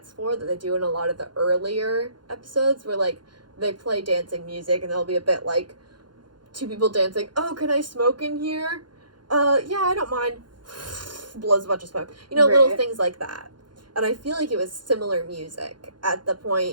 floor that they do in a lot of the earlier episodes where, like, they play dancing music, and there'll be a bit, like, 2 people dancing. Oh, can I smoke in here? Yeah, I don't mind. Blows a bunch of smoke. You know, little things like that. And I feel like it was similar music at the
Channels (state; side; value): late; left; 0.71 ms